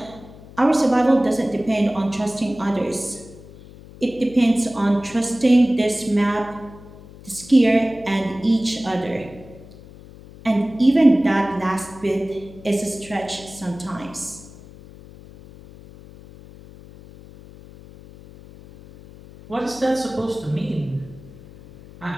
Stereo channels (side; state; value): left; noise; hum, 19 dB below the sound